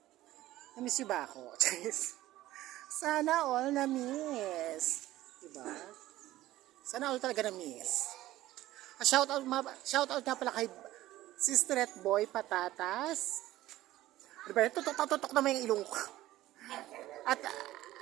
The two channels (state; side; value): quieter; left; 15.5 dB